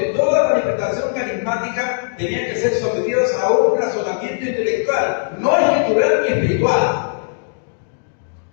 toda manifestación carismática tenía que ser sometida a un razonamiento intelectual, no escritural ni espiritual.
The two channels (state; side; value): silent; right; digital silence